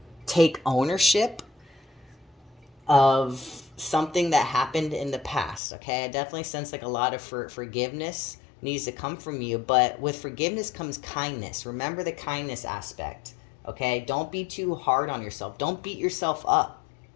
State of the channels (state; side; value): drops out; right; at 5.6 s